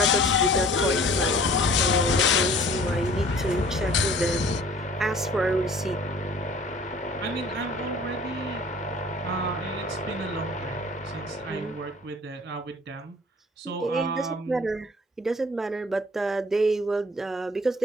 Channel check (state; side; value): normal; both; correlation 0.50